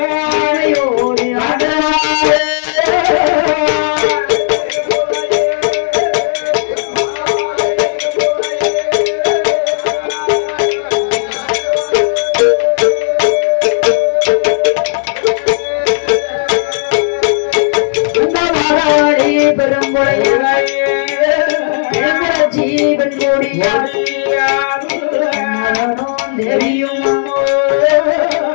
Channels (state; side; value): silent; right; digital silence